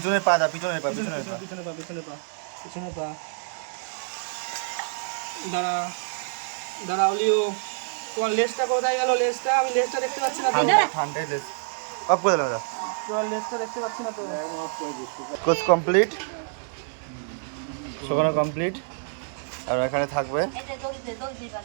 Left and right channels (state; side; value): silent; left; 60 dB below the other